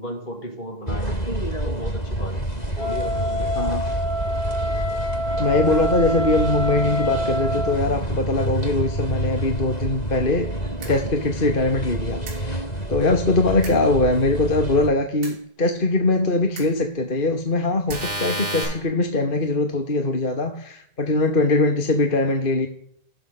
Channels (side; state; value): right; late; 2.0 ms